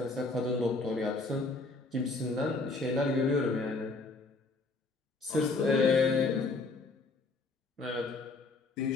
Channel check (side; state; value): right; quieter; 3.6 dB